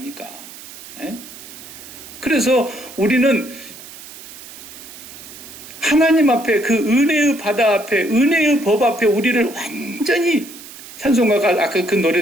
에? 그래서 우리는 하나님 앞에 그 은혜의 바다 앞에 은혜의 법 앞에 우리를 완전히 찬송가가 아까 그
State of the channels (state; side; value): noise; right; hiss, 16 dB below the sound